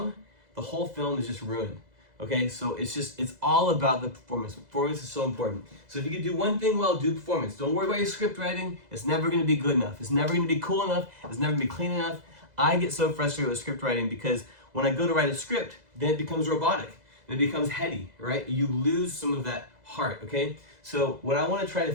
the whole film is just ruined. Okay, so it's all about the performance. Performance is so important. So if you could do one thing well, do performance. Don't worry about your script writing. It's never going to be good enough. It's never going to be cool enough. It's never going to be clean enough. I get so frustrated with script writing because when I go to write a script, then it becomes robotic. And it becomes heady, right? You lose some of that heart, okay? So what I want to try to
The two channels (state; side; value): late; left; 2.0 ms